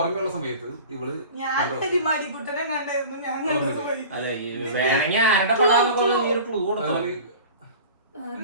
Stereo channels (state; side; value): inverted; both; correlation -0.40